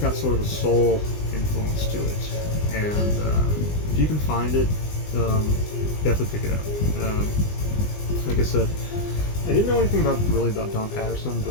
sort of a soul influence to it, and if you can find it, definitely pick it up. Like I said, I didn't know anything about Don Patterson,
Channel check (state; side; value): late; right; 20 ms